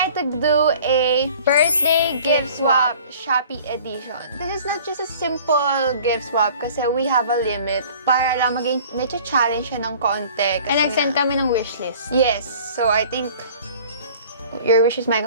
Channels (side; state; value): both; inverted; correlation -0.48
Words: to do a birthday gift swap Shopee edition. This is not just a simple gift swap kasi we have a limit para lang maging medyo challenge siya ng konti. And nag-send kami ng wishlist. Yes! So I think your wish is my